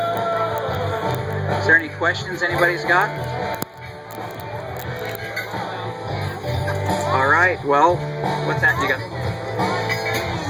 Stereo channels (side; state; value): both; identical; correlation 1.00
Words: Is there any questions anybody's got? All right, well, what's that you got?